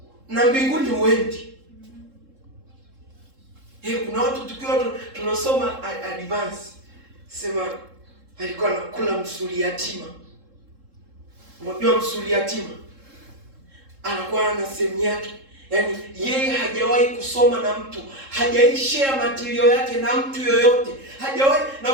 na mbinguni uendi. Kuna watu tukiwa tunasoma advance, sema alikuwa anakula msuli yatima. Unajua msuli yatima anakuwa na sehemu yake. Yaani yeye hajawahi kusoma na mtu, hajawahi share material yake na mtu yoyote. Hajawahi.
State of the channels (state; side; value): late; left; 3.7 ms